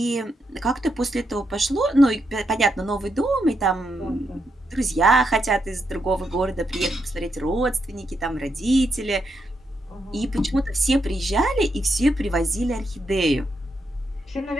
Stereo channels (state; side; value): normal; both; correlation 0.82